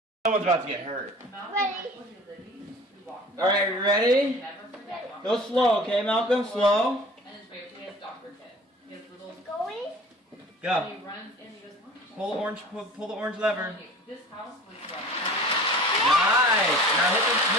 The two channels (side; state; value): both; normal; correlation 0.44